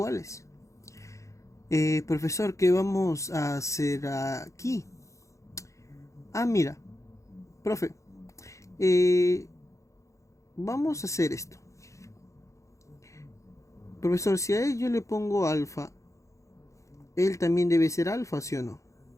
Profesor, ¿qué vamos a hacer aquí? Mira, profe, vamos a hacer esto. Profesor, si a él yo le pongo alfa, él también debe ser alfa, ¿sí o no?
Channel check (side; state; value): right; late; 0.15 ms